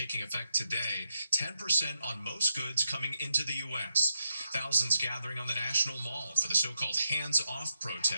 effect today, 10% on most goods coming into the U.S. Thousands gathering on the National Mall for the so-called hands-off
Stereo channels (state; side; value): inverted; both; correlation -0.84